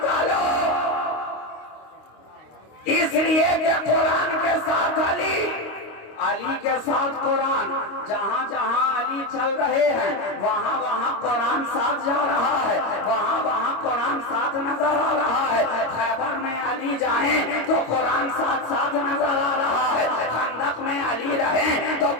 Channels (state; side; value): late; right; 25 ms